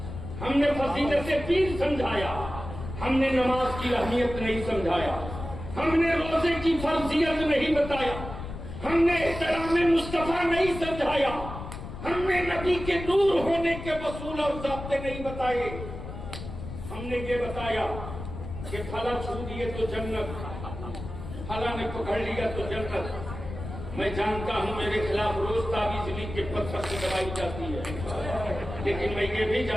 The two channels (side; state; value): left; noise; rumble, 9 dB below the sound